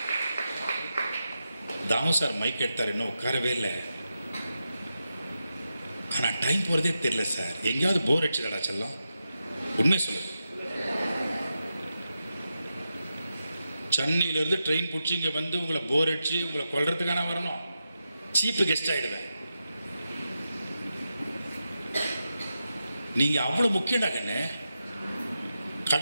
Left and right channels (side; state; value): both; inverted; correlation -0.89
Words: தாமு சார் மைக் எடுத்தார், இன்னும் உட்காரவே இல்லை. ஆனால் டைம் போகிறதே தெரியல சார். எங்கேயாவது போர் அடிச்சுடா செல்லம், உண்மை சொல்லு. சென்னையிலேருந்து ட்ரெயின் பிடிச்சி இங்கே வந்து உங்களை போர் அடிச்சு உங்களை கொல்றதுக்கான வரணும். சீப்பு கெஸ்ட் ஆகிடுவேன். நீங்கள் அவ்வளோ முக்கியம்டா கண்ணு.